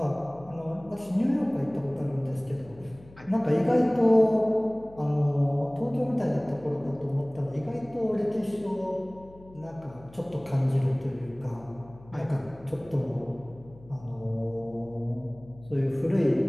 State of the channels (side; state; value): left; noise; hum, 22 dB below the sound